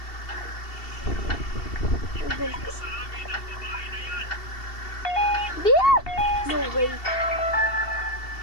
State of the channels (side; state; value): right; late; 2.7 ms